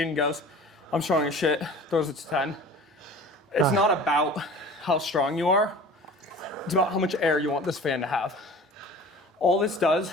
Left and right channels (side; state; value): both; normal; correlation 0.42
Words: and goes, I'm strong as shit, throws it to 10. It's not about how strong you are. It's about how much air you want this fan to have. All this does